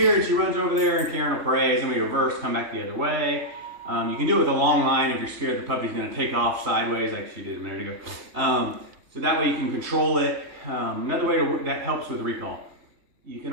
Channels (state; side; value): late; left; 3.4 ms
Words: and she runs over there and Karen will praise and we reverse, come back the other way. You can do it with a long line if you're scared the puppy's going to take off sideways like she did a minute ago. So that way you can control it. Another way that helps with recall. You can